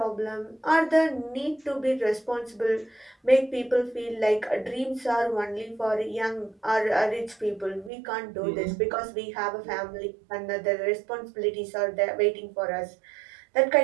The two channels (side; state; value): left; drops out; at 7.9 s